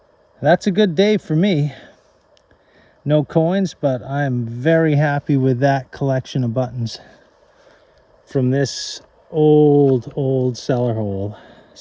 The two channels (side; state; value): both; identical; correlation 1.00